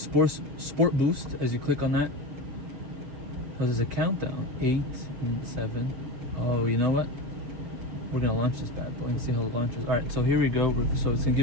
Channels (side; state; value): left; late; 7.3 ms